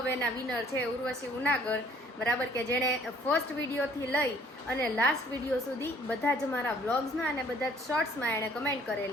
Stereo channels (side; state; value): both; normal; correlation 0.59